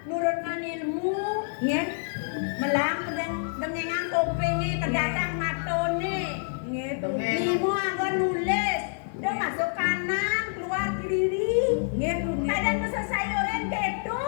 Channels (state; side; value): silent; right; 55 dB below the other